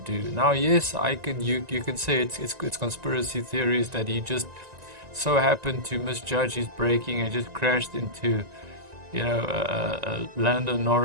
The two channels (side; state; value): left; late; 1.9 ms